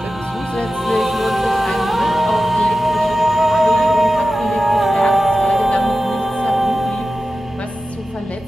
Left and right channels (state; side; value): normal; both; correlation 0.94